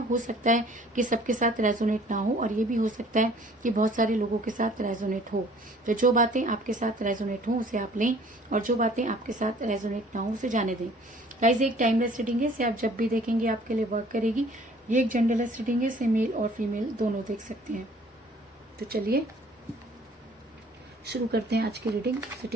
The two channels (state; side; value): normal; both; correlation 0.54